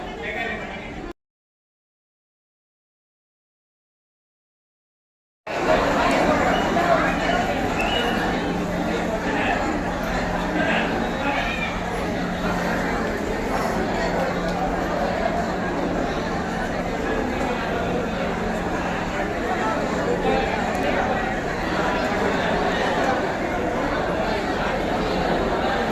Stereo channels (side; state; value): both; identical; correlation 1.00